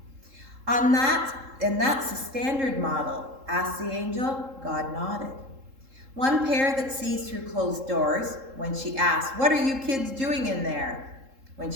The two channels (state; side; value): late; left; 3.7 ms